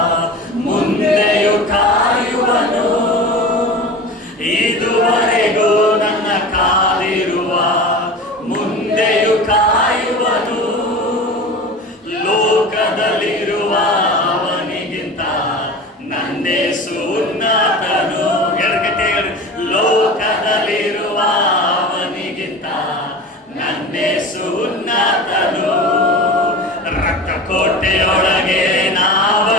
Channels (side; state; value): both; normal; correlation 0.33